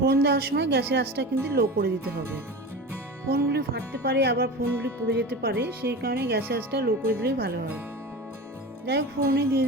দেওয়ার সময় গ্যাসের আঁচটা কিন্তু লো করে দিতে হবে। ফোড়নগুলি ফাটতে পারে, আবার ফোড়নগুলি পুড়ে যেতে পারে, সেই কারণে গ্যাসের আঁচটা লো করে দিলেই ভালো হয়। যাই হোক, ফোড়নে দিয়ে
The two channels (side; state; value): both; normal; correlation 0.30